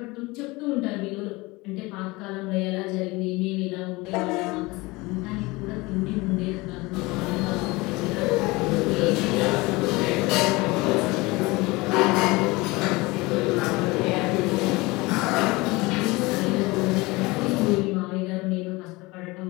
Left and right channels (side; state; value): right; quieter; 22.9 dB